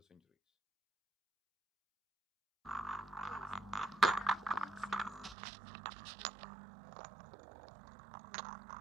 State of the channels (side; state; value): left; drops out; at 5.4 s